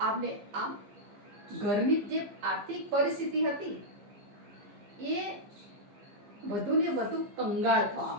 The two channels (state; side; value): late; left; 15 ms